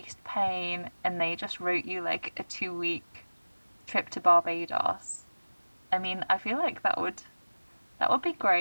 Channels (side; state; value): both; inverted; correlation -1.00